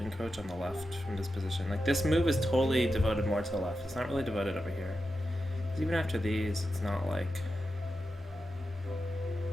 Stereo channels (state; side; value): normal; both; correlation 0.90